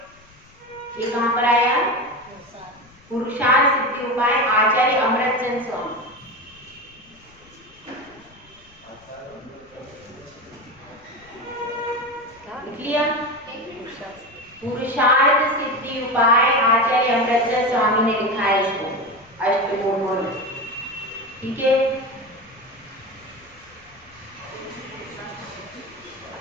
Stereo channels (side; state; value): left; noise; rumble, 28 dB below the sound